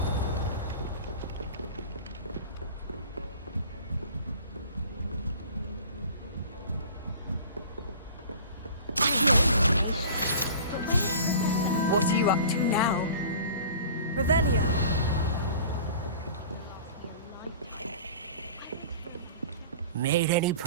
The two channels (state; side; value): inverted; both; correlation -0.42